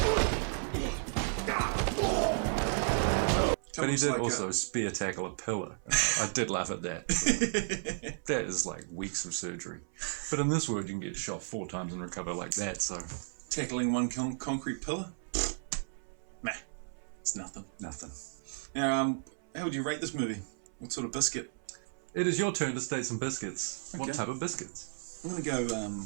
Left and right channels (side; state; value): left; silent; 55 dB below the other